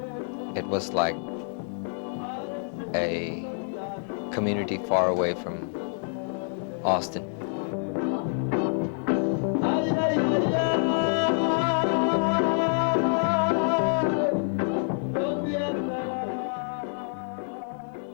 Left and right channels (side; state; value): right; silent; 60 dB below the other